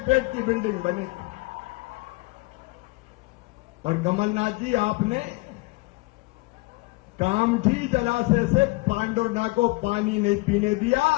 की बिल्डिंग बनेगी। और कमलनाथ जी, आपने कामठी जलाशय से पांडुना को पानी नहीं पीने दिया,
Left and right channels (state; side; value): quieter; right; 23.9 dB